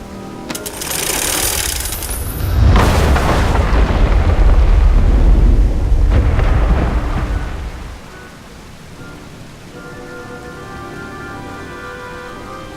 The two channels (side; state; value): both; identical; correlation 1.00